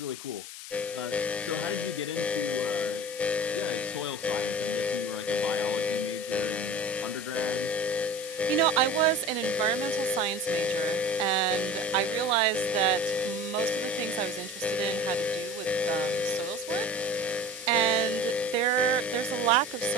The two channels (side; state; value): left; noise; hiss, 11 dB below the sound